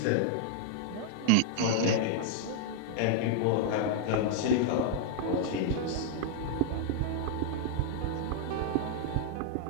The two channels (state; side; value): different; both; correlation -0.01